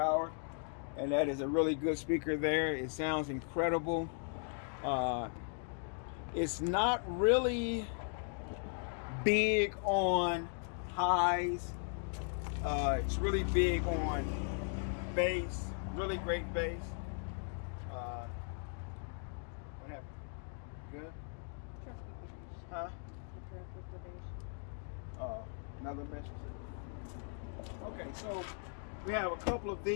And that is a really good speaker there. It sounds incredible. It's not really big on highs. It's really big on bass. Really great bass. What happened? Good? Huh? Another message. Okay, so we have a couple of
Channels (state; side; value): silent; right; 53 dB below the other